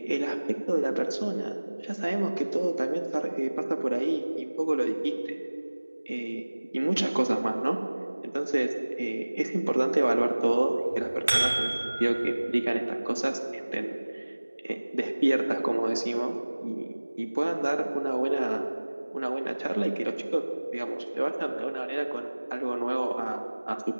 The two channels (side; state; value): both; inverted; correlation -1.00